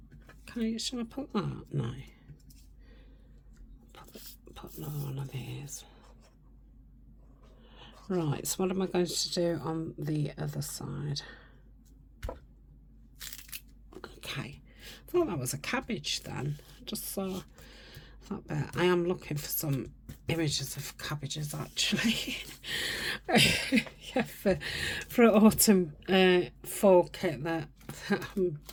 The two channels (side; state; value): both; identical; correlation 1.00